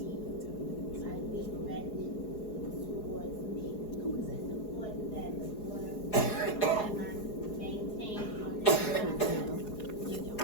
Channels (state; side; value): late; right; 4.8 ms